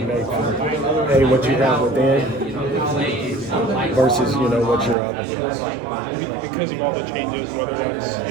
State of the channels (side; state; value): left; drops out; at 5.0 s